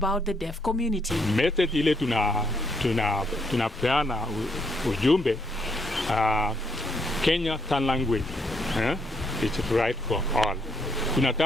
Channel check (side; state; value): both; normal; correlation 0.73